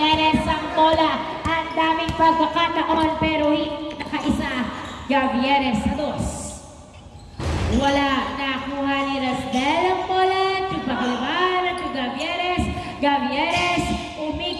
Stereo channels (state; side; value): identical; both; correlation 1.00